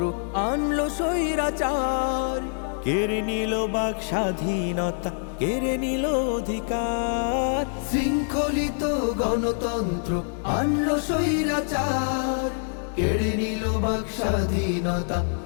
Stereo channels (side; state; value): right; silent; digital silence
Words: আনলো স্বৈরাচার, কেড়ে নিল বাক স্বাধীনতা, কেড়ে নিল অধিকার। শৃঙ্খলিত গণতন্ত্র আনলো স্বৈরাচার, কেড়ে নিল বাক স্বাধীনতা,